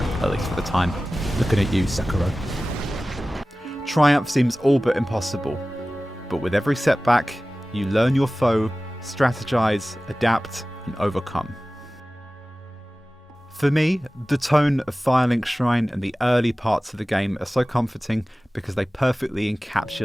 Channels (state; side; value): normal; both; correlation 0.97